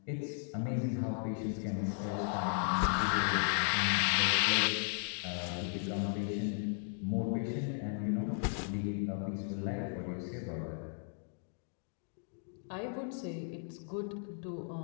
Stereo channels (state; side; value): silent; right; 54 dB below the other